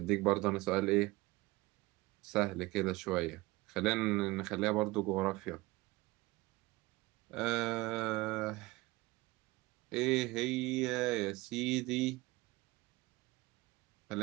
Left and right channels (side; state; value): left; quieter; 21.2 dB